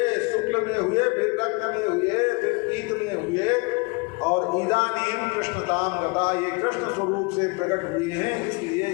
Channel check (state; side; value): quieter; right; 28.7 dB